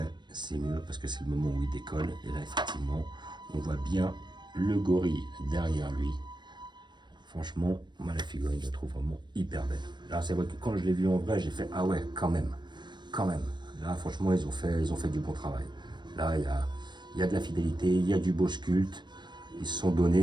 c'est mieux parce que c'est le moment où il décolle. Et là, effectivement, on voit bien le gorille derrière lui. Franchement, moi, la figurine, je la trouve vraiment hyper belle. Là, c'est vrai que quand je l'ai vu en vrai, j'ai fait, ah ouais, quand même, quand même. Là, franchement, ils ont fait du bon travail. Là, il y a de la fidélité, il y a du beau sculpte. Ils se sont donnés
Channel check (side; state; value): left; late; 0.22 ms